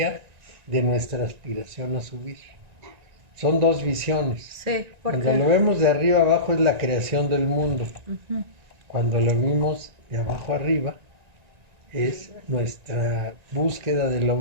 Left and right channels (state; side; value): late; left; 1.9 ms